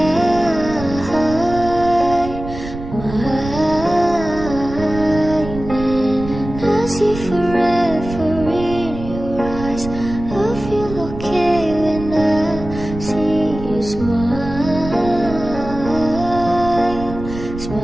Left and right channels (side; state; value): right; noise; rumble, 10 dB below the sound